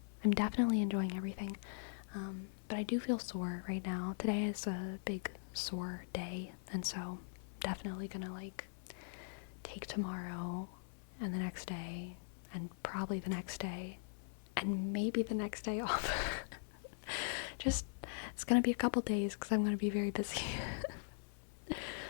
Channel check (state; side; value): silent; right; 50 dB below the other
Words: definitely enjoying everything. But I do feel sore right now. Today is a big sore day, and so definitely gonna like take tomorrow and the next day and probably the next day and maybe the next day off. Just, it's gonna be a couple days because I'm gonna be very busy.